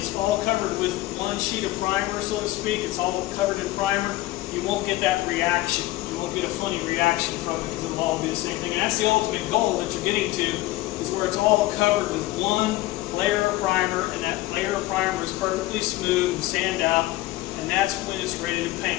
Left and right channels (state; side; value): quieter; right; 17.6 dB